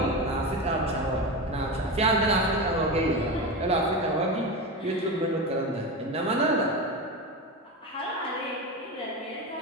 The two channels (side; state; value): both; normal; correlation 0.20